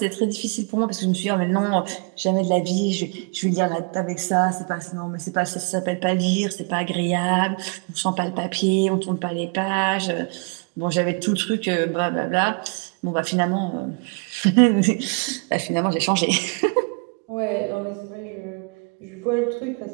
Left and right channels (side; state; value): left; quieter; 34.7 dB